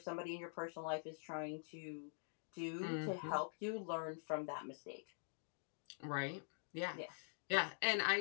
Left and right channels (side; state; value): right; silent; digital silence